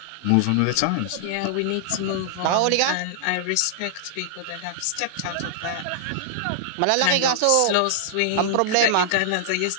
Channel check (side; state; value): both; different; correlation -0.01